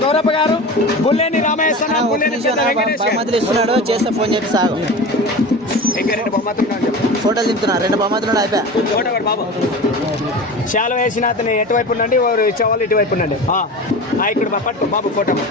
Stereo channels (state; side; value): normal; both; correlation 0.32